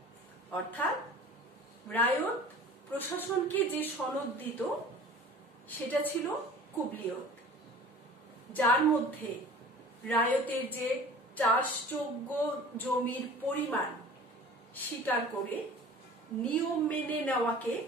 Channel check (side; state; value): both; normal; correlation 0.43